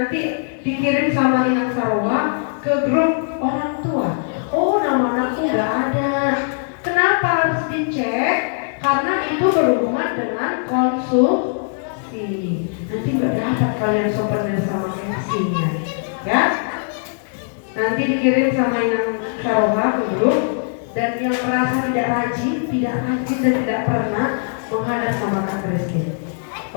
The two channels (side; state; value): right; silent; digital silence